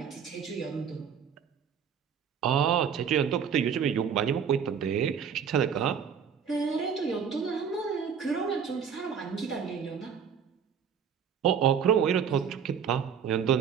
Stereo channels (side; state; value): left; quieter; 7.5 dB